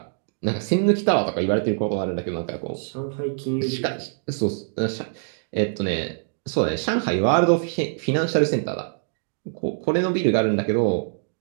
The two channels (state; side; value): silent; left; digital silence